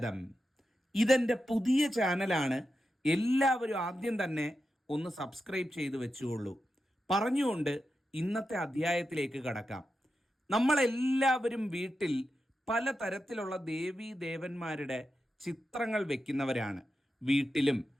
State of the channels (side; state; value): both; normal; correlation 0.89